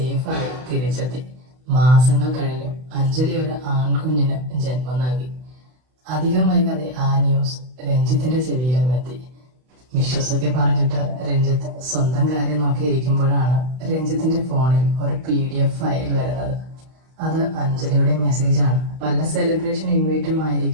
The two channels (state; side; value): late; left; 32 ms